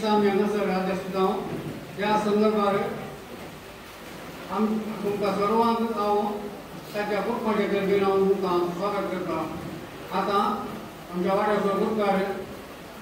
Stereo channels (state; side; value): identical; both; correlation 1.00